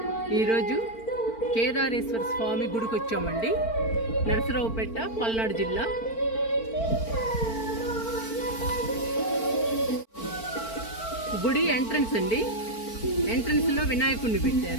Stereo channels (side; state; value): right; late; 4.4 ms